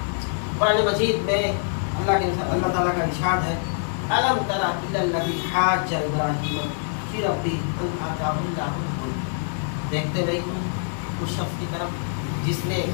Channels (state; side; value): silent; right; digital silence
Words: قرآن مجید میں اللہ تعالیٰ کا ارشاد ہے الم تر الی الذی حاج ابراہیم فی ربہ ان آتاہ اللہ الملک. دیکھتے نہیں تم اس شخص کی طرف جس نے